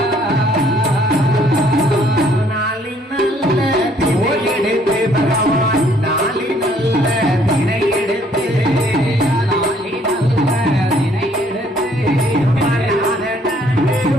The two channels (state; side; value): normal; both; correlation 0.63